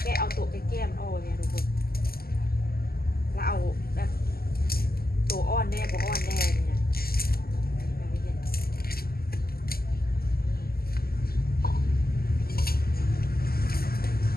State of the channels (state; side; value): late; right; 0.44 ms